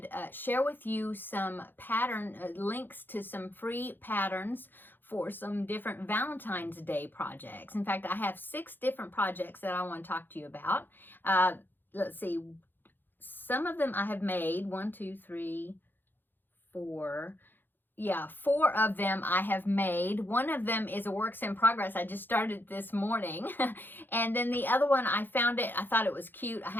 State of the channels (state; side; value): late; right; 0.094 ms